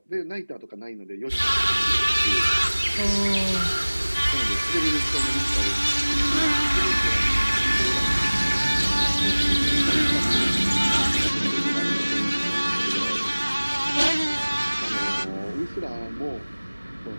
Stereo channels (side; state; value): both; inverted; correlation -1.00